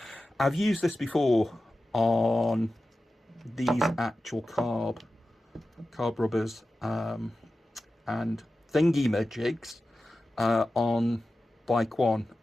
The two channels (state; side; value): normal; both; correlation 0.94